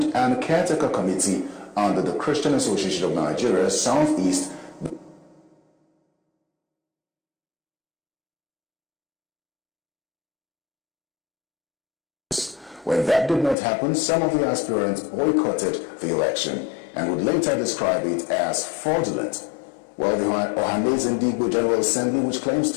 and a caretaker committee under the Christian Association of Nigeria Southeast When that did not happen, some of the aspirants boycotted the election and would later describe it as fraudulent. Well, the Ohaneze Ndi Igbo General Assembly, which claims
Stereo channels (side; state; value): right; drops out; at 13.6 s